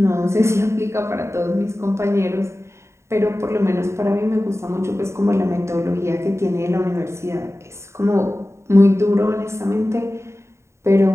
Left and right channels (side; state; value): left; late; 0.13 ms